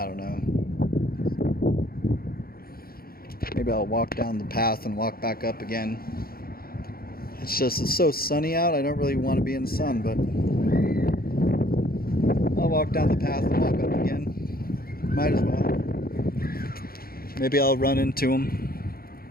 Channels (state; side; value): late; right; 0.43 ms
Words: don't know. Maybe I'll walk down the path and walk back up again. It's so sunny out, I don't really want to be in the sun, but I'll walk down the path and walk up again. Might as well. Maybe I'll run into him.